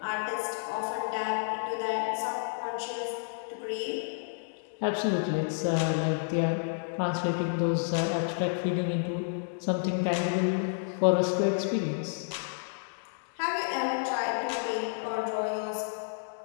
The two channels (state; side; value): silent; right; digital silence